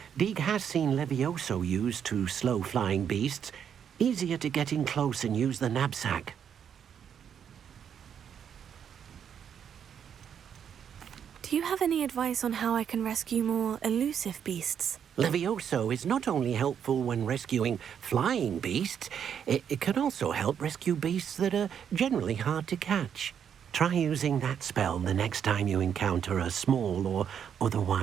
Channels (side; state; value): left; quieter; 8.3 dB